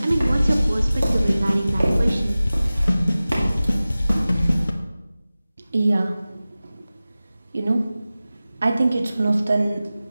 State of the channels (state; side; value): inverted; both; correlation -0.97